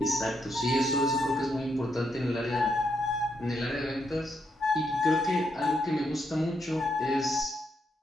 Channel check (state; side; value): normal; both; correlation 0.78